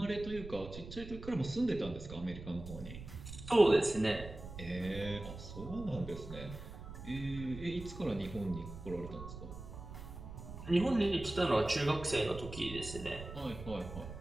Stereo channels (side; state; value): right; noise; rumble, 11 dB below the sound